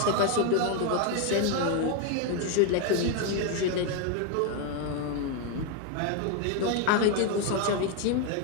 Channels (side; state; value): both; different; correlation 0.01